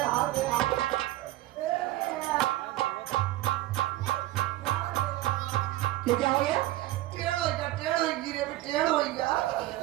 क्या हो गया? टेढ़ हो गया।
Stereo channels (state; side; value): quieter; left; 16.5 dB